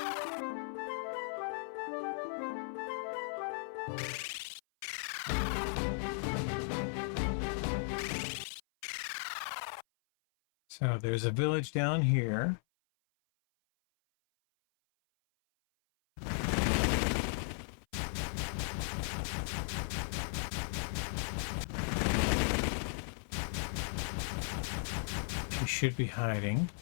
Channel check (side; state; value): right; silent; 53 dB below the other